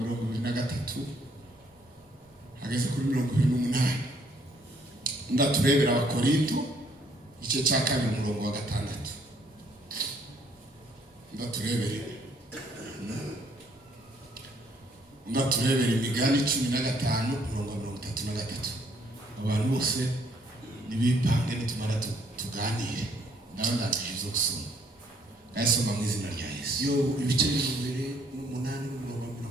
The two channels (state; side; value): normal; both; correlation 0.66